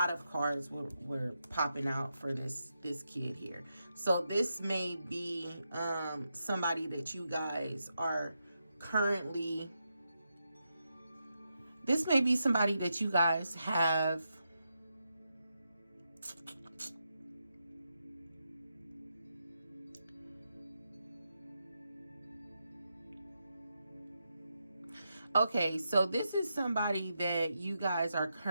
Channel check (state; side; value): inverted; both; correlation -0.85